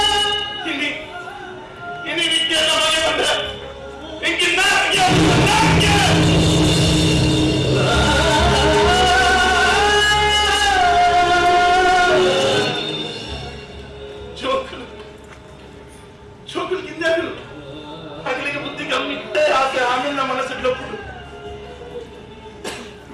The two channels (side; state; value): both; identical; correlation 1.00